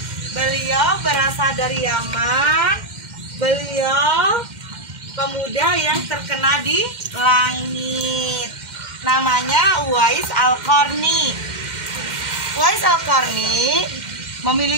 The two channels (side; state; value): left; late; 2.1 ms